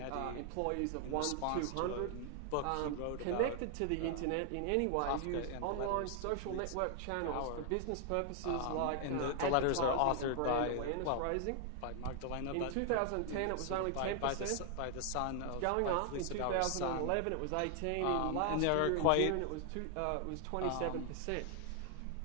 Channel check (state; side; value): different; both; correlation 0.00